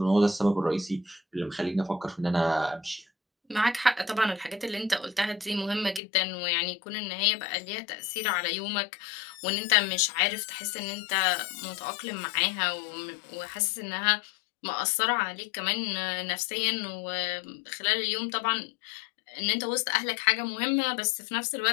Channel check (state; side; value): drops out; right; at 6.0 s